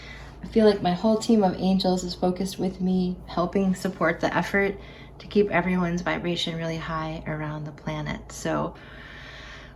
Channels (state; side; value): identical; both; correlation 1.00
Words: I feel like my whole team of angels is focused with me, helping support the effort to keep everyone's vibration really high around the planet. So